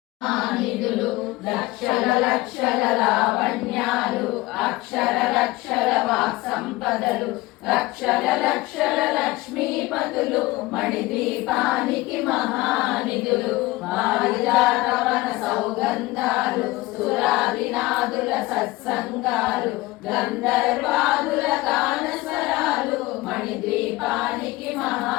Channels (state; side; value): quieter; right; 20.0 dB